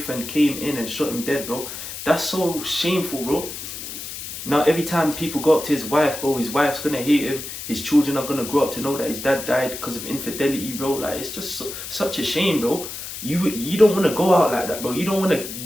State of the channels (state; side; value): noise; left; hiss, 9 dB below the sound